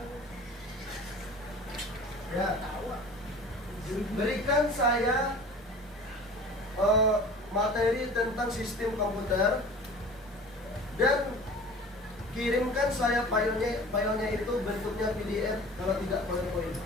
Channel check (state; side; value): normal; both; correlation 0.41